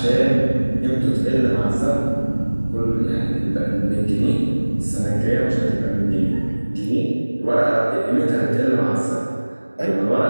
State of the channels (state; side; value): inverted; both; correlation -1.00